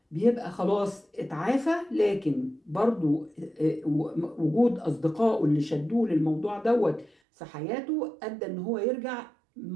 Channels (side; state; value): left; drops out; at 7.1 s